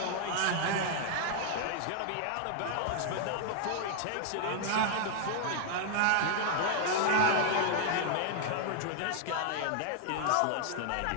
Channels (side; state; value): both; different; correlation 0.00